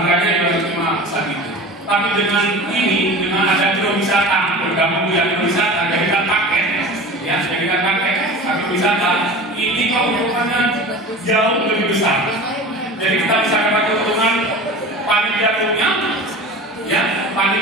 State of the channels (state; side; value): normal; both; correlation 0.36